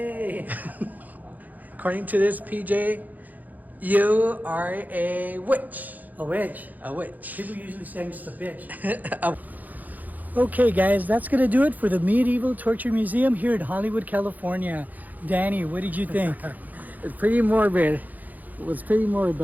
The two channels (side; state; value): left; late; 0.082 ms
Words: According to this, PJ, you are a witch. A witch. A witch. People usually say I'm just a bitch. Okay, guys, that's going to do it for the Medieval Torture Museum here in Hollywood, California. Danny, what did you think? It's pretty morbid. It was pretty morbid,